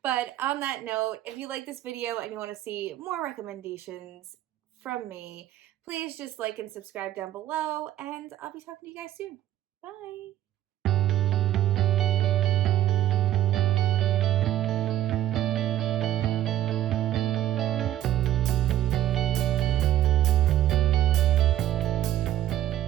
But on that note, if you like this video and you want to see more recommendations from me, please just like and subscribe down below, and I'll be talking to you guys soon. Bye!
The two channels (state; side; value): quieter; left; 12.9 dB